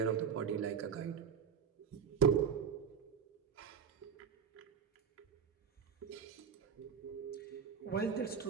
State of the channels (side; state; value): left; quieter; 7.2 dB